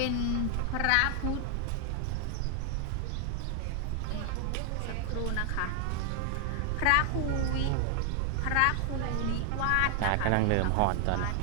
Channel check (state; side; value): different; both; correlation 0.00